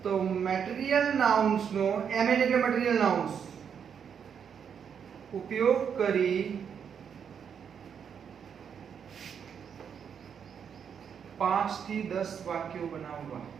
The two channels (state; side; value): quieter; left; 7.5 dB